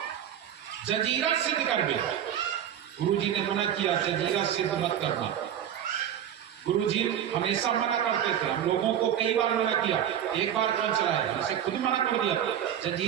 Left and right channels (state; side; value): quieter; left; 9.9 dB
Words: जजीरा सिद्ध कर गए। गुरु जी ने मना किया, जजीरा सिद्ध मत करना। गुरु जी हमेशा मना करते थे, हम लोगों को कई बार मना किया, एक बार कौन चलाया, इसे खुद मना कर दिया